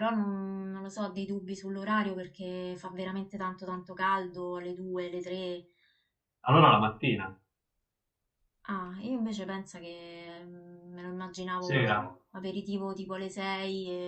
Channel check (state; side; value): identical; both; correlation 1.00